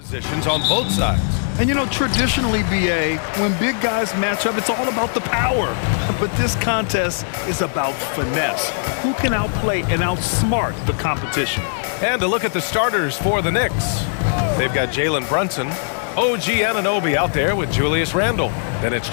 Positions on both sides. And you know, traditionally, BA, when big guys match up, it's all about the power. But this contest is about finesse. Who can outplay and outsmart the competition? And to look at the starters for the Knicks. They've got Jalen Brunson, OG Anunoby out there with Julius Randle. Then it's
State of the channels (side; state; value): right; silent; 63 dB below the other